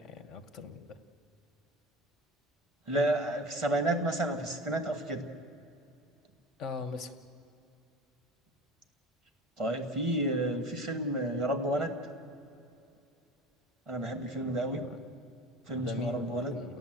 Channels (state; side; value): normal; both; correlation 0.35